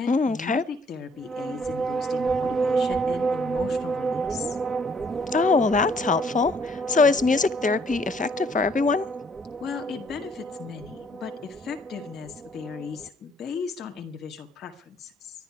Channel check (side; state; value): both; normal; correlation 0.64